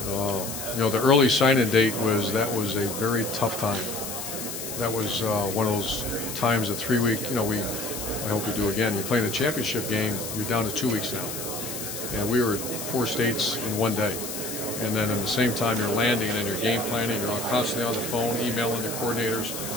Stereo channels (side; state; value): left; noise; hiss, 7 dB below the sound